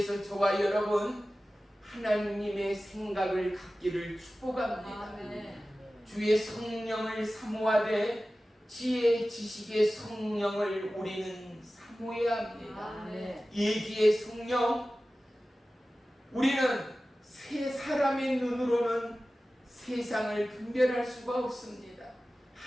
저와 여러분 하나님의 생각을 갖기를 축복합니다. 주의 성령을 사모하되 지혜 지식의 성령을 우리는 사모해야 합니다. 예기의 성령, 우리는 세 사람의 눈으로는 세상을 분별할 수가 없습니다.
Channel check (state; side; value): normal; both; correlation 0.96